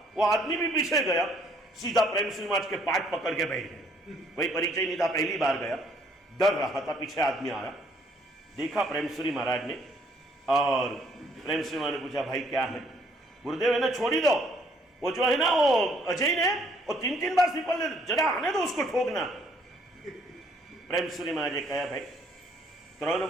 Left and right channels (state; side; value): normal; both; correlation 0.64